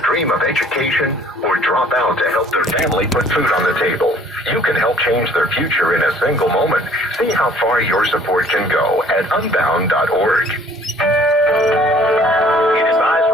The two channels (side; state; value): both; normal; correlation 0.55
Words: of education or drop out to help their family put food on the table. You can help change their future in a single moment. See how far your support can go at Unbound.org. Heat